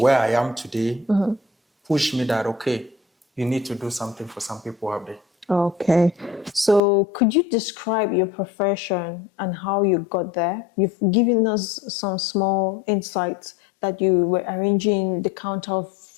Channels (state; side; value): drops out; right; at 6.8 s